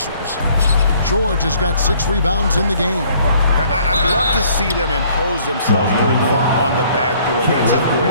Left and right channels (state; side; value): inverted; both; correlation -0.59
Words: George has got 6 rebounds in the game. I'd love to see them impose themselves a little more on the backboard. That's a